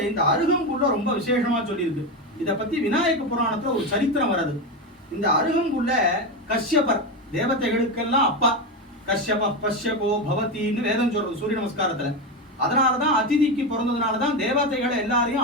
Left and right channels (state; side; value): normal; both; correlation 0.15